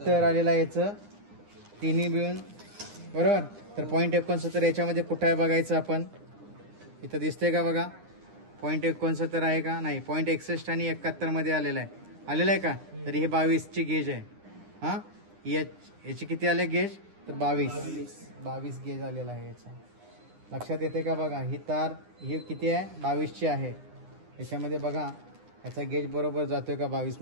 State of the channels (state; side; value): late; left; 9.9 ms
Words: आलेला याचं तिन्ही मिळून. बरोबर. तर 0.69 याच्यामध्ये कुठं आहे बघायचं आपण. इथं दिसतंय का बघा 0.69 आहे का नाही. 0.61 आणि 71 मध्ये आलेला आहे का. तर ही 22ची गेज आहे. हा याची किती आले गेज तर 22 गेज आलेला आहे याचा. लक्षात येते का बघा. ही तार ही किती आहे 22ची आहे. याच्यामध्ये बघा याचा गेज बरोबर जातोय का 22